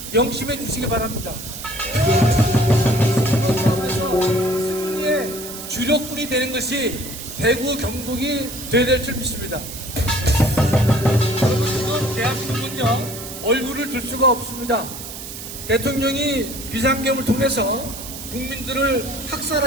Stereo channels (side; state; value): right; noise; hiss, 10 dB below the sound